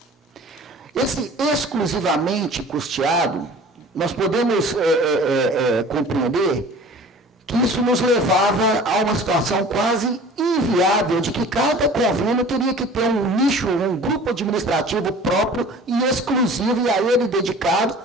Esse exclusivamente custeado, nós podemos compreender que isso nos levava a uma situação quase inviável de que cada convênio teria que ter um nicho, um grupo administrativo próprio e exclusivo, e a ele dedicado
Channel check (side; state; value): both; normal; correlation 0.44